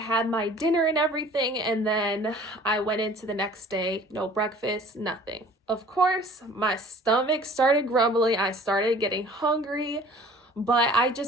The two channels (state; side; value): normal; both; correlation 0.49